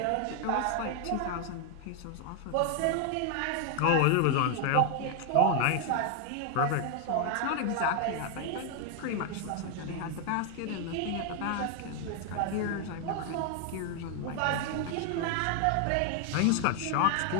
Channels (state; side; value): different; both; correlation 0.00